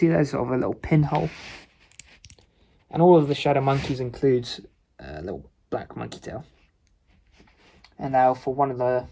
there's sort of a little pinhole. And all of the Shadow Monkeys includes a little black monkey tail. And now for one of the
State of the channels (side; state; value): both; identical; correlation 1.00